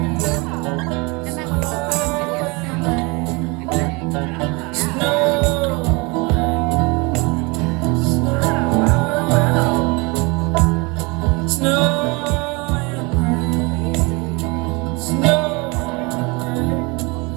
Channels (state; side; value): quieter; left; 27.4 dB